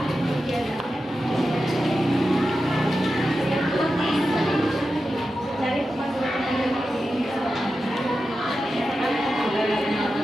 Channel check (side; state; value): both; normal; correlation 0.91